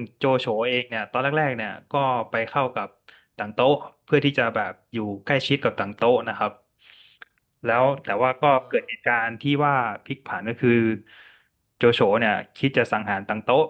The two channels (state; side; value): identical; both; correlation 1.00